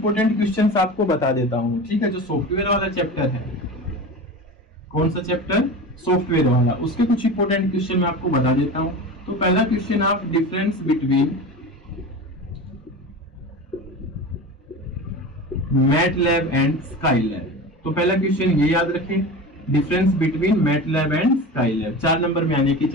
क्वेश्चंस आपको बता देता हूँ। ठीक है, जो सॉफ्टवेयर वाला चैप्टर है, कौन सा चैप्टर, सॉफ्टवेयर वाला, उसके कुछ इंपोर्टेंट क्वेश्चन मैं आपको बता देता हूँ। तो पहला क्वेश्चन आप difference between MATLAB and Skylab, तो पहला क्वेश्चन ये याद रखें, difference between MATLAB and Skylab, 4 number में आने की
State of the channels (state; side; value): normal; both; correlation 0.30